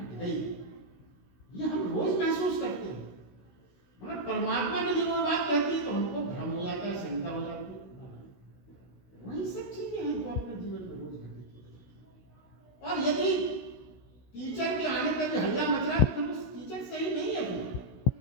गई। ये हम रोज महसूस करते हैं, मगर परमात्मा ने जब वो बात कहती है तो हमको भ्रम हो जाता है, शंका हो जाती है। वही सब चीजें हैं जो अपने जीवन में रोज घटित होती हैं। और यदि टीचर के आने पर भी हल्ला मच रहा है तो फिर उस टीचर सही नहीं है।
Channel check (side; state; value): right; late; 16 ms